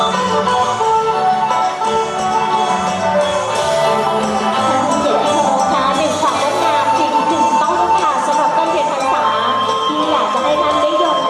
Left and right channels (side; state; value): both; identical; correlation 1.00